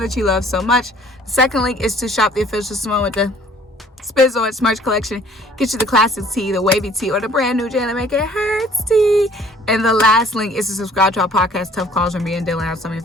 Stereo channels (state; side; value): normal; both; correlation 0.55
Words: you love so much. The second link is to shop the official Symone with the Sports merch collection. Get you the classic tee, the wavy tee, or the brand new Jalen Make It Hurts tee. And the last link is to subscribe to our podcast, Tough Calls, where me and Dylan have some of your